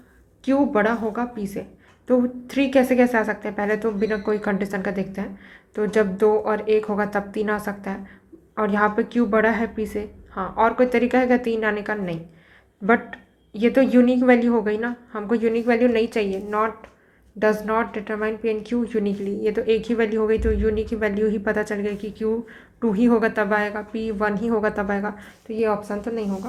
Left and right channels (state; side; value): identical; both; correlation 1.00